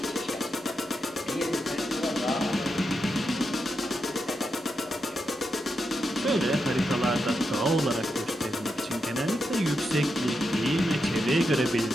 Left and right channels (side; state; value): both; normal; correlation 0.86